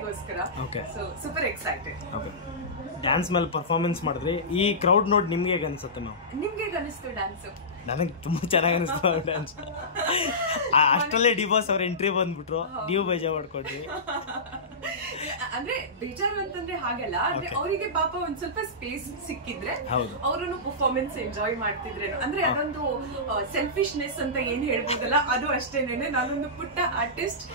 So super excited. ಡ್ಯಾನ್ಸ್ ಮೇಲೆ ಪರ್ಫಾರ್ಮೆನ್ಸ್ ಮಾಡಿದ್ರಿ, ಈ ಕ್ರೌಡ್ ನೋಡಿ ನಿಮ್ಗೆ ಹೇಗೆ ಅನ್ಸುತ್ತೆ ಮ್ಯಾಮ್? ನಿಮ್ಗೆ ಹೇಗೆ ಅನಿಸ್ತು ಡ್ಯಾನ್ಸ್? ನನಗೆ ತುಂಬಾ ಚೆನ್ನಾಗಿ ಅನಿಸ್ತು ಡ್ಯಾನ್ಸ್. ಅಷ್ಟರಲ್ಲೇ ಡಿ ಬಾಸ್ ಅವ್ರ ಎಂಟ್ರಿ ಬಂದ್ಬಿಟ್ರು, ನೀವು ಬೇಜಾರು ಮಾಡ್ಕೊಂಡ್ರಿ. ಅಂದ್ರೆ ಬೇಜಾರು ಅಂತಂದ್ರೆ ಹಾಗಲ್ಲ, ಅಂದ್ರೆ ಅವರಿಗೆ ಪಾಪ ಒಂದ್ ಸ್ವಲ್ಪ ಸ್ಪೇಸ್ ಸಿಕ್ಕಿದ್ರೆ ಅವರನ್ನು ಪರ್ಫಾರ್ಮೆನ್ಸ್ ಎಂಜಾಯ್ ಮಾಡ್ತಿದ್ರೇನು, ಅಂದ್ರೆ ಅದೊಂದು ಸೆಲ್ಫಿಶ್ನೆಸ್ ಅಂತ ಏನ್ ಹೇಳ್ಬೋದಲ್ಲ, ಅದು ಅಷ್ಟೇನೇನೆ. ನಾನೊಂದು ಪುಟ್ಟ ಆರ್ಟಿಸ್ಟ್,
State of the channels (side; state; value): both; normal; correlation -0.19